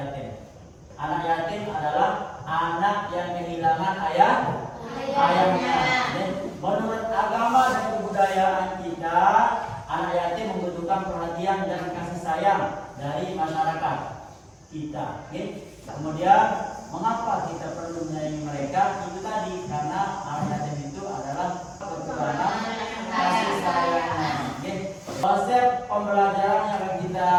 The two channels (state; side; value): identical; both; correlation 1.00